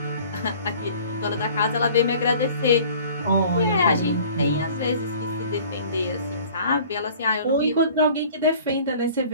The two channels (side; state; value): both; inverted; correlation -0.48